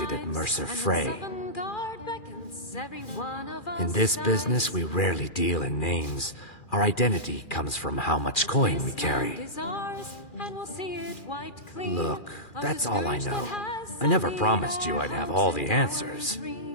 at Mercer Frey. In this business, we rarely deal in names. Our identity comes from how much coin we carry. Look, that's all I know. I never promised you I'd have all the answers.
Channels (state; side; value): late; right; 2.4 ms